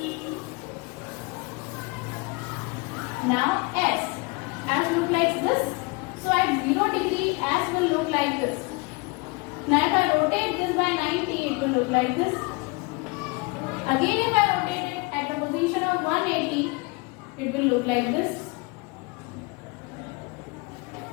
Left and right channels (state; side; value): quieter; right; 27.4 dB